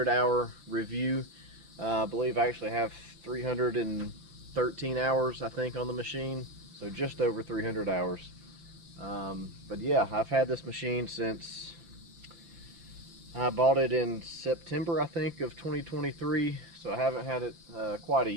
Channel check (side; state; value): left; late; 5.7 ms